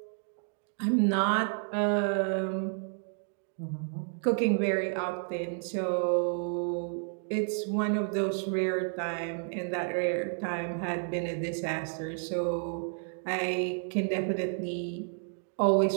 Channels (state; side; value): silent; left; 57 dB below the other